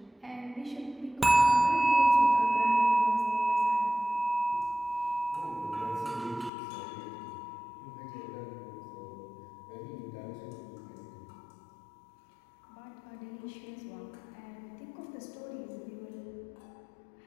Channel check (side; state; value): right; drops out; at 6.5 s